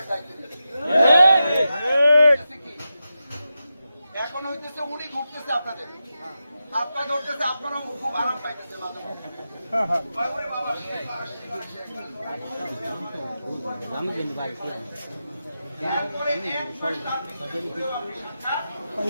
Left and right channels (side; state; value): both; inverted; correlation -0.90